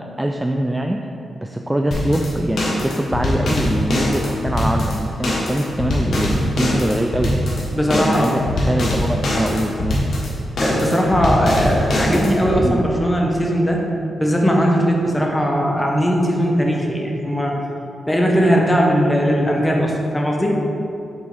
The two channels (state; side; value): normal; both; correlation 0.89